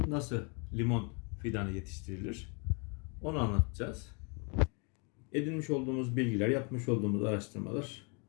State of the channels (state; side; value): quieter; right; 34.2 dB